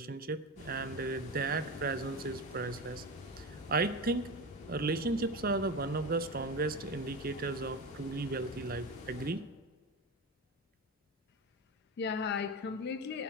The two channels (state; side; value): normal; both; correlation 0.22